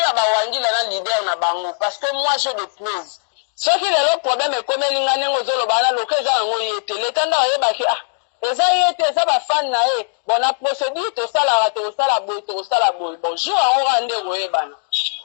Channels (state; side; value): silent; right; 63 dB below the other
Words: bawangila na leader na bango parce que moi je de preuve soki lelo problème ekomeli nga ndenge ozoloba na loka eza yango ye te leta nde oyebaki eza ye te eza bafani na ye bon na procédure tosalaka tosala boye bon jour yango ka nde koyebana